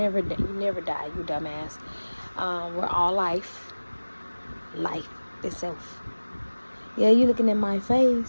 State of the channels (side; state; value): both; inverted; correlation -1.00